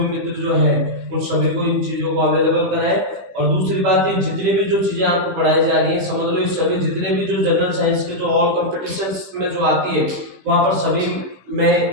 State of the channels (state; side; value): late; left; 16 ms